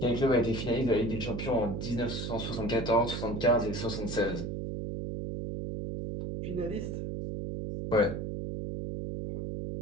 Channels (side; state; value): right; noise; hum, 4 dB below the sound